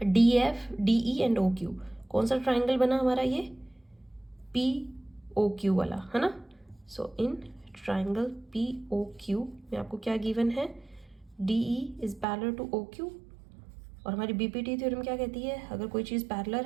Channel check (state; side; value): drops out; left; at 12.2 s